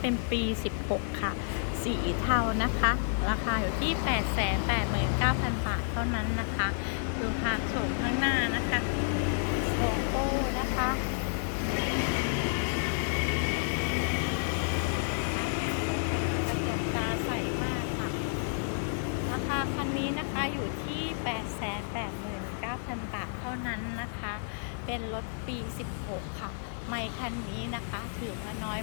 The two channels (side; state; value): right; silent; digital silence